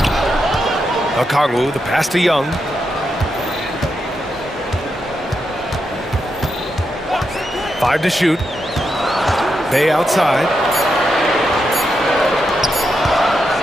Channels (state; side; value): normal; both; correlation 0.84